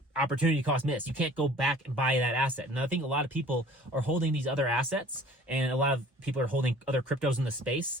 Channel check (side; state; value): both; normal; correlation 0.49